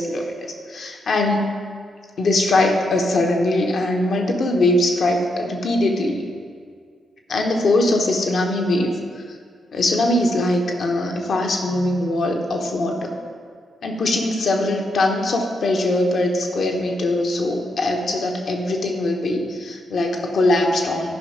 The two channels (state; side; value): normal; both; correlation 0.80